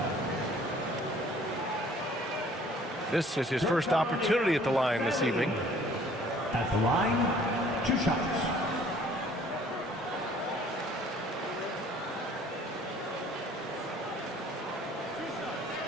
This is his first opportunity at the line this evening. At the line, 2 shots.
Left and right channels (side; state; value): both; normal; correlation 0.55